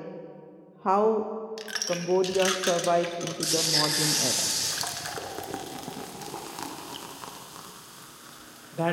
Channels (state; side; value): identical; both; correlation 1.00